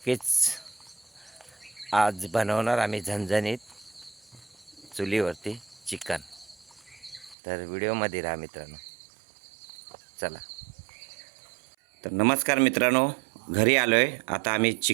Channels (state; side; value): drops out; left; at 7.4 s